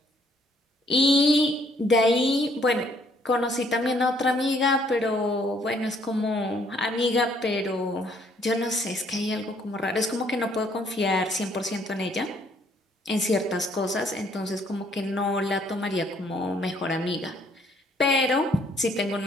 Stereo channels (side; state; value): both; normal; correlation 0.65